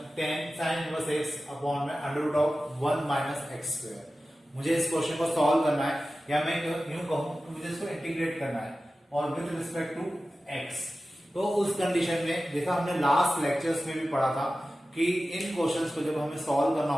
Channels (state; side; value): normal; both; correlation 0.95